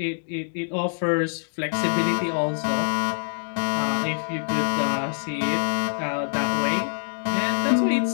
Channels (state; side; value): silent; right; 62 dB below the other